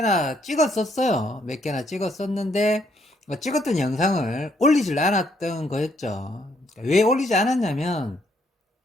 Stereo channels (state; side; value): normal; both; correlation 0.71